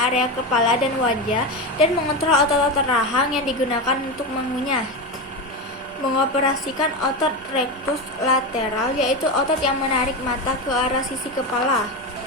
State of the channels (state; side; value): normal; both; correlation 0.18